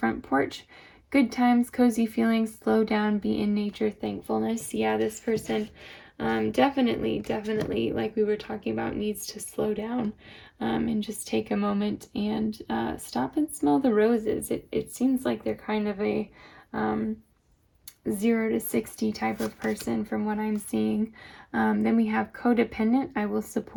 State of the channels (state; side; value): identical; both; correlation 1.00